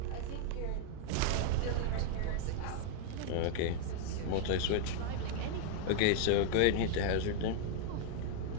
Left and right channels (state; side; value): different; both; correlation 0.00